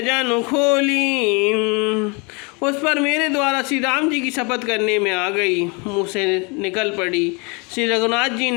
खोली। उस पर मेरे द्वारा श्री राम जी की शपथ करने में आ गई, मुँह से निकल पड़ी। श्री रघुनाथ जी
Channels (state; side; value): quieter; right; 30.7 dB